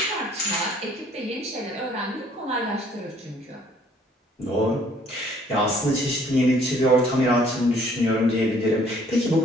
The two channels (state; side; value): normal; both; correlation 0.60